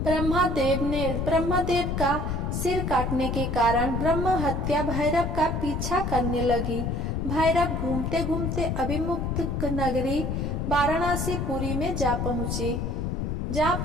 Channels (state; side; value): noise; left; rumble, 1 dB below the sound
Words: ब्रह्मदेव का सिर काटने के कारण ब्रह्म हत्या भैरव का पीछा करने लगी। भैरव घूमते घूमते अभिमुक्त नगरी वाराणसी पुरी में जा पहुँचे।